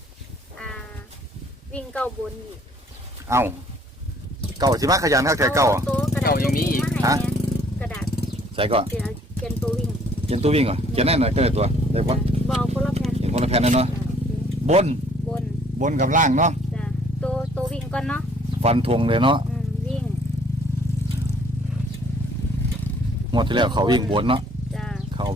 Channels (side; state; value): both; normal; correlation 0.60